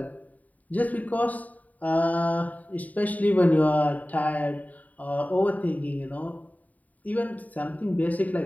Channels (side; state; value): right; late; 0.073 ms